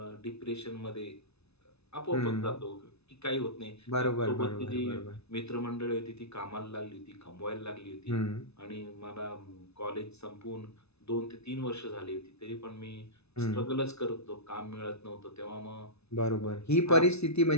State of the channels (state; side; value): late; right; 0.80 ms